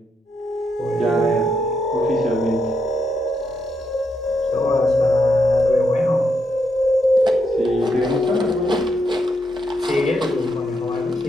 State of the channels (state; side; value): normal; both; correlation 0.80